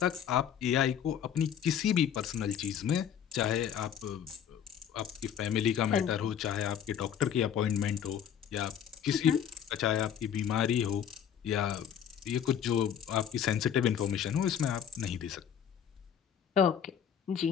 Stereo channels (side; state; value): right; quieter; 8.8 dB